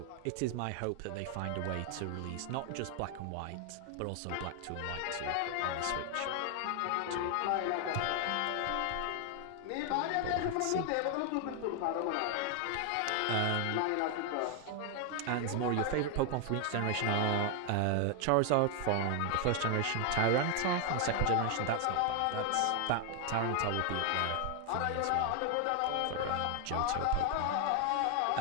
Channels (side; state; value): both; different; correlation 0.00